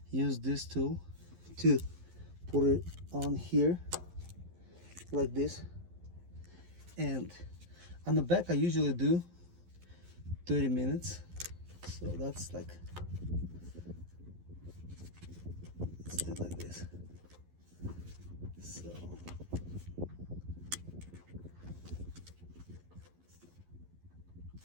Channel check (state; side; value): late; left; 11 ms